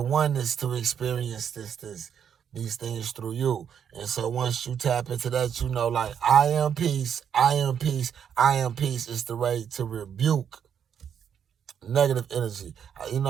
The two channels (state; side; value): quieter; left; 8.2 dB